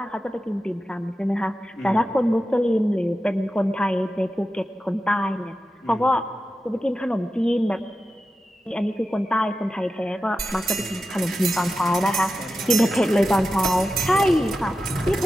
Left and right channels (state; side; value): normal; both; correlation 0.92